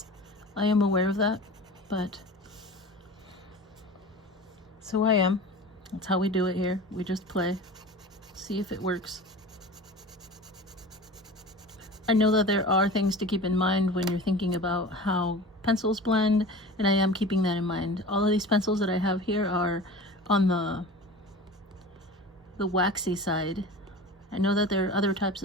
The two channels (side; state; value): both; normal; correlation 0.36